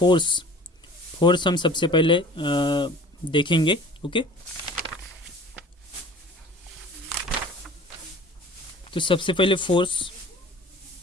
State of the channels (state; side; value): normal; both; correlation 0.45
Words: हम सबसे पहले देखेंगे। ओके, तो सबसे पहले फोर्स